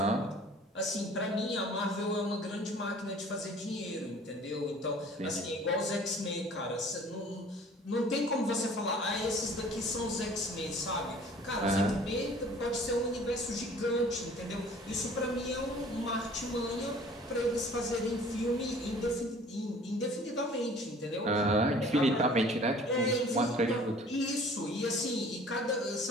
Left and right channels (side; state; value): both; normal; correlation 0.50